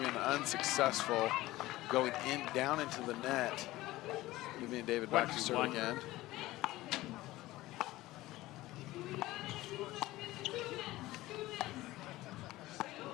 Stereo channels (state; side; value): quieter; right; 17.6 dB